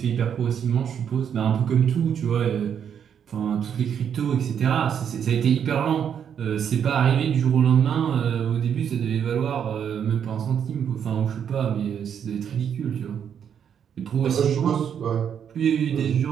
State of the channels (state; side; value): quieter; left; 8.3 dB